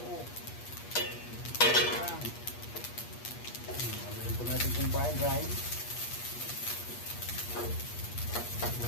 Natin itong fried rice.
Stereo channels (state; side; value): late; right; 8.4 ms